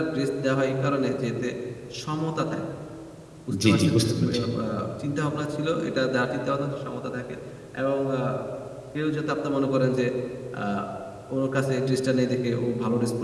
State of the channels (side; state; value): both; identical; correlation 1.00